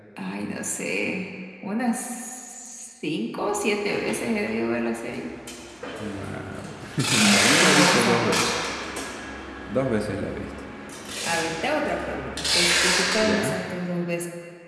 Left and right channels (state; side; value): identical; both; correlation 1.00